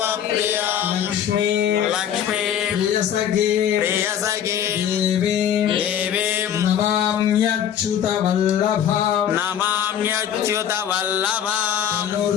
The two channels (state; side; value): quieter; right; 9.5 dB